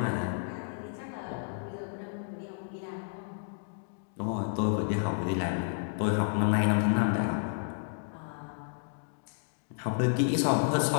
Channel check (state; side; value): silent; right; digital silence